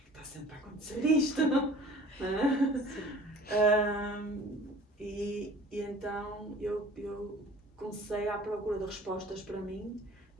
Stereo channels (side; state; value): both; normal; correlation 0.47